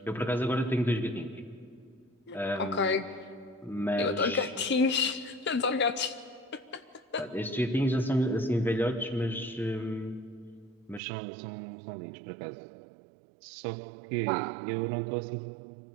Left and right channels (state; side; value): drops out; left; at 11.0 s